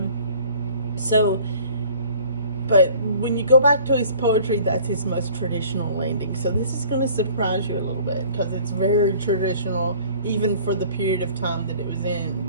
But when you go back to his poetry, that's his most traditional landing. So this is going to surprise you a little bit, because it's very traditional, even for the period of time that it was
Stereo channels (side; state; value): both; inverted; correlation -0.51